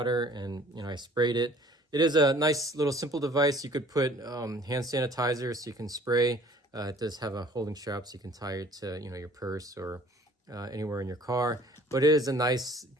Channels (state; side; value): normal; both; correlation 0.53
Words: and I sprayed it. It is a nice little simple device. You could put hand sanitizer so you can spray. It does have a holding strap so you can tie it to your purse or anywhere in your car. But it is a nice,